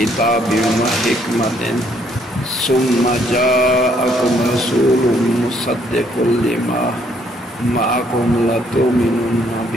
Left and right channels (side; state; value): both; normal; correlation 0.68